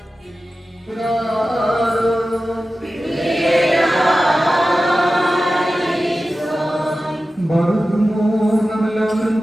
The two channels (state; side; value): normal; both; correlation 0.94